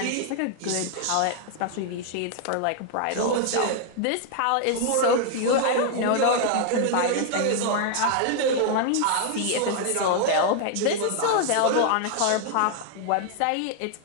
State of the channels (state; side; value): different; both; correlation 0.00